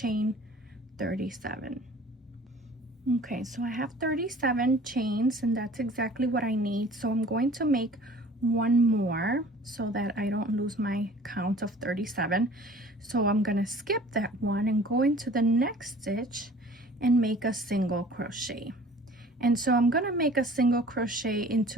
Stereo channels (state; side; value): normal; both; correlation 0.48